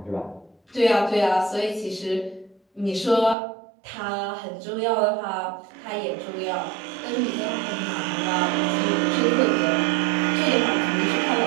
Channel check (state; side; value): drops out; left; at 3.4 s